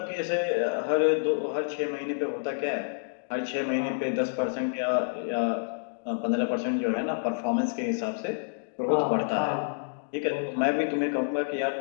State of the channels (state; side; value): silent; right; digital silence